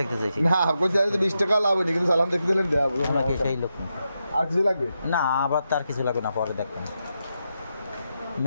চাইছি? না কই যাই 20 টাকা লাভ হয়নি, কিন্তু চালান দেখতে দিলেন দেব। আপনার কি সেই লোক? আর কিছু লাগবে না, আবার তার কিছু লাগবে না, পরে দেখবেন।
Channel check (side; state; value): both; inverted; correlation -0.86